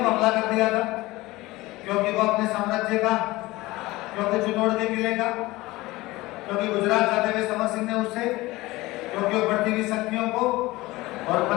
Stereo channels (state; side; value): quieter; right; 19.7 dB